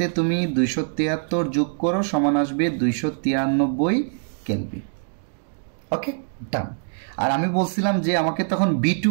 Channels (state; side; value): silent; left; digital silence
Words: তুমি 273 যোগ করো, সমান আসবে 293 কেলভিন। ওকে, ডান। আর আমি বলছিলাম যে আমাকে তখন B2